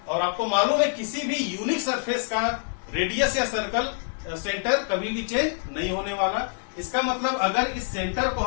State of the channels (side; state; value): right; silent; digital silence